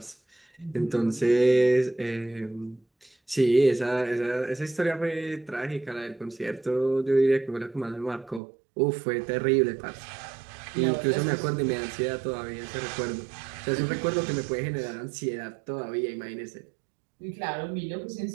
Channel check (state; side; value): drops out; left; at 8.4 s